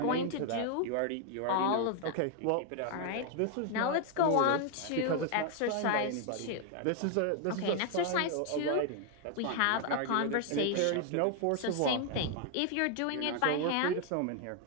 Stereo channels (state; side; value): different; both; correlation 0.00